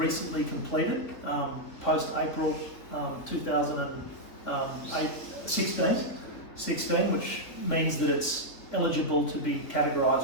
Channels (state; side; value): late; right; 4.0 ms